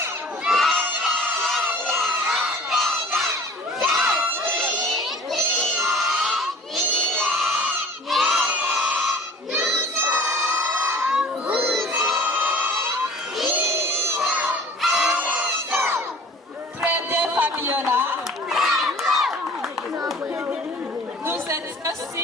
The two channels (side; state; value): both; normal; correlation 0.47